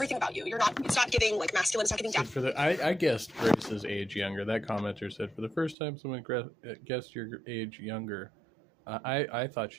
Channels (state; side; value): drops out; left; at 5.8 s